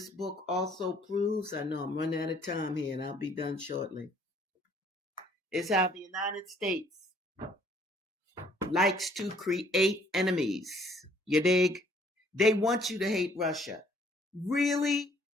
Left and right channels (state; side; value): normal; both; correlation 0.61